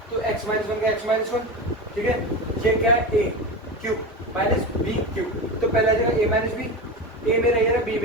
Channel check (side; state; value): both; normal; correlation 0.24